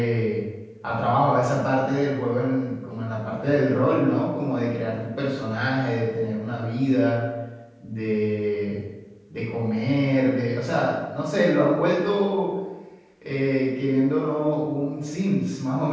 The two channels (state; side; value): identical; both; correlation 1.00